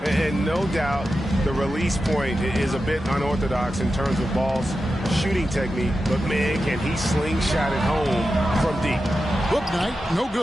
And no doubt the release point is a bit unorthodox in terms of Ball's shooting technique, but man, can he slingshot it home from deep. Hook Knight, no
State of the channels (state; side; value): normal; both; correlation 0.91